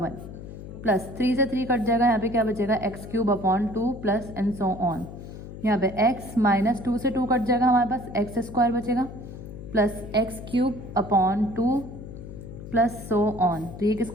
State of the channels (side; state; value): left; noise; hum, 12 dB below the sound